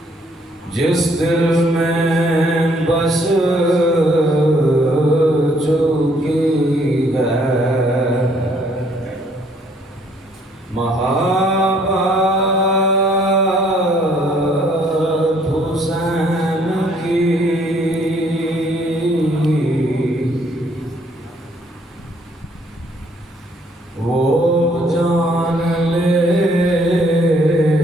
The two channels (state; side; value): normal; both; correlation 0.65